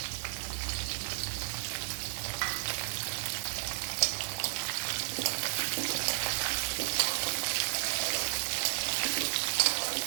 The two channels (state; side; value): silent; left; digital silence